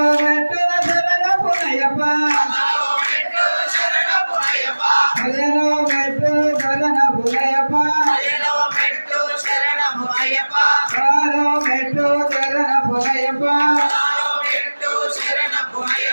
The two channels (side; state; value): both; inverted; correlation -1.00